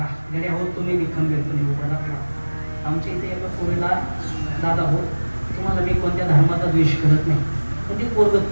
गड्या हो, तुम्ही बी खंबीरपणे उभा राहा. आमच्या इथे एका पोरीला, दादा हो, तुम्हाला मी कोणत्या धर्माचा द्वेष करत नाही, पण ते पोरग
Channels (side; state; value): both; inverted; correlation -1.00